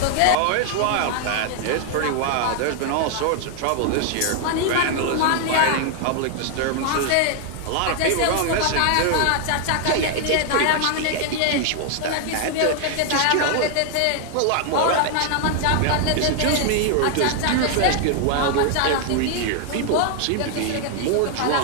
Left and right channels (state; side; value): different; both; correlation 0.00